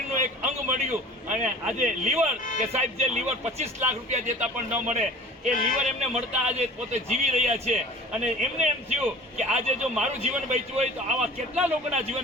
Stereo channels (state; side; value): normal; both; correlation 0.44